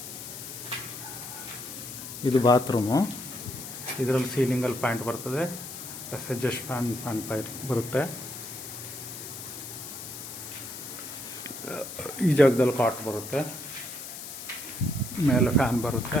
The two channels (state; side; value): noise; left; hiss, 10 dB below the sound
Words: ಇದು ಬಾತ್ರೂಮು. ಇದರಲ್ಲಿ ಸೀಲಿಂಗಲ್ಲಿ ಪಾಯಿಂಟ್ ಬರ್ತದೆ, ಎಡ್ಜಸ್ಟ್ ಫ್ಯಾನ್ ಪೈರ್ ಬರುತ್ತೆ. ಈ ಜಾಗದಲ್ಲಿ ಕಾಟ್ ಬರುತ್ತೆ, ಮೇಲೆ ಫ್ಯಾನ್ ಬರುತ್ತೆ,